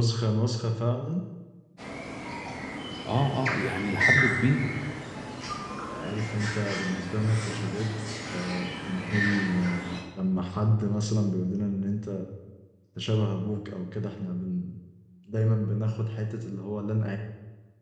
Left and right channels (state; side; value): identical; both; correlation 1.00